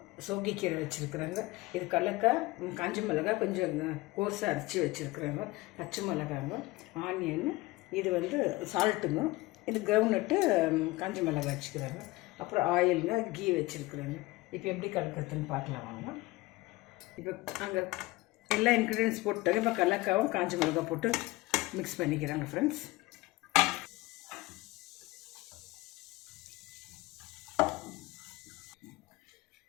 சோகிக்கீரை வச்சுருக்குறாங்க, இது கடலக்காய், காஞ்ச மிளகாய் கொஞ்சம் கோர்ஸாக அரைச்சி வச்சுருக்குறாங்க, பச்சை மிளகாங்க, ஆனியன், இது வந்து சால்ட்டுங்க, இது கிரவுண்ட்நட்டு, காஞ்ச மிளகாய் வச்சுக்கிறாங்க, அப்புறம் ஆயிலுங்க, கீ வச்சுருக்குறாங்க. இப்போ எப்படி கலக்கிறதுன்னு பார்க்கலாம் வாங்க. இப்போ அங்கே எல்லா இன்க்ரீடியன்ஸ் போட்டுட்டாங்க. இப்போ கடலக்காவும் காஞ்ச மிளகாய் போட்டு மிக்ஸ் பண்ணிக்கிறாங்க ஃப்ரெண்ட்ஸ்.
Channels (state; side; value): quieter; right; 20.6 dB